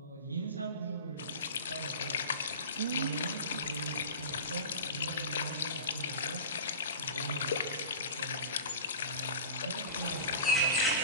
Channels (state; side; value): inverted; both; correlation -0.34